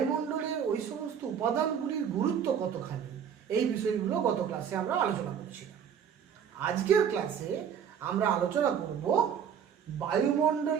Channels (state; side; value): quieter; left; 8.0 dB